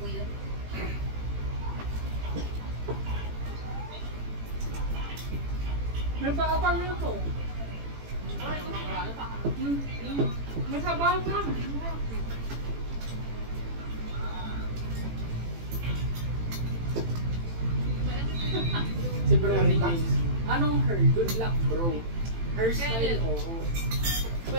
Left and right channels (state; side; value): late; left; 18 ms